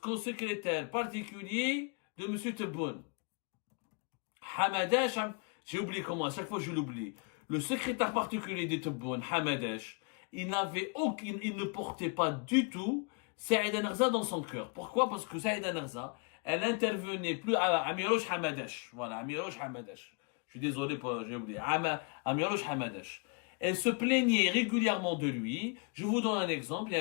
particulier de M. Tebboune. Hamadash, j'ai oublié comment, à chaque fois je l'oublie. le secrétaire particulier de Tebboune, Hamadesh, il ne portait pas du tout Saïd Narza dans son cœur. Pourquoi? Parce que Saïd Narza, elle intervenait plus à Amirouche Hamadesh. Voilà, Amirouche Hamadesh. Je suis désolé j'ai oublié. Amirouche Hamadesh. Elle se plaignait régulièrement de lui. Je vous donne un exemple. Il y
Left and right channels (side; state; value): right; quieter; 33.7 dB